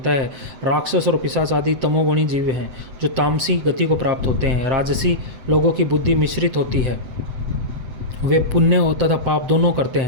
है। राक्षस और पिशाच आदि तमोगुणी जीव हैं जो तामसी गति को प्राप्त होते हैं। राजसी लोगों की बुद्धि मिश्रित होती है। वे पुण्य तथा पाप दोनों करते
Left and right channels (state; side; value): late; left; 7.9 ms